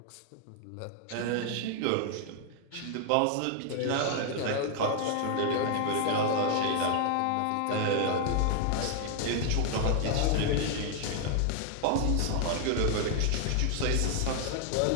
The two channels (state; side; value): different; both; correlation 0.00